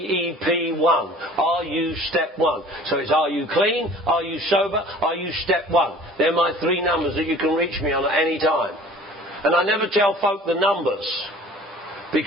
Are you step 1? So it's, are you clean? Are you sober? Are you step 1? They're my 3 numbers that you can reach me on at any time. And I never tell folk the numbers,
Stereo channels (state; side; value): normal; both; correlation 0.47